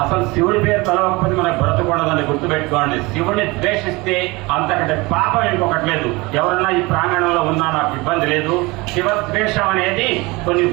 శివుడి పేరు తలవకపోతే మనకు బ్రతకూడదని గుర్తుపెట్టుకోండి. శివుడిని ద్వేషిస్తే అంతకంటే పాపం ఇంకొకటి లేదు. ఎవరన్నా ఈ ప్రాంగణంలో ఉన్నా నాకు ఇబ్బంది లేదు. శివద్వేషం అనేది కొన్ని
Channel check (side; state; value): left; quieter; 23.7 dB